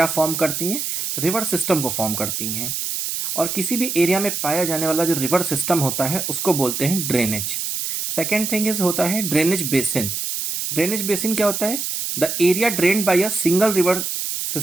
फॉर्म करती हैं? रिवर सिस्टम को फॉर्म करती हैं। और किसी भी एरिया में पाया जाने वाला जो रिवर सिस्टम होता है उसको बोलते हैं ड्रेनेज। सेकेंड थिंग इज होता है ड्रेनेज बेसिन। ड्रेनेज बेसिन क्या होता है? The area drained by a single river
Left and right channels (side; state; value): right; noise; hiss, 3 dB below the sound